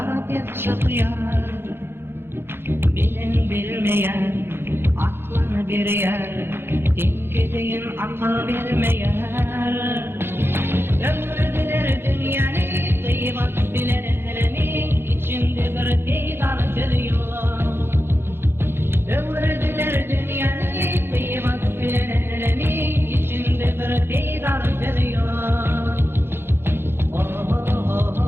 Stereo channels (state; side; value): late; left; 0.11 ms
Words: çok yar. Bilmeyen, aklına bir yer, denk edin akıl bilmeyen. Ömrüdüler dünyanı, kıymet bilenlerin içinde bir peydar geliyor. Ömrüdüler dünyanı, kıymet bilenlerin içinde bir peydar geliyor.